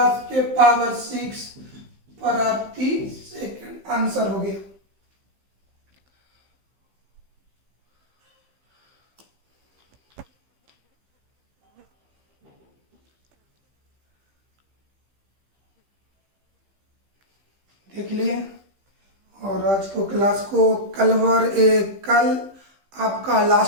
के पावर 6 प्रति सेकंड। आंसर हो गया। देख लिए। और आज को क्लास को कल आपका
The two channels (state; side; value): late; left; 15 ms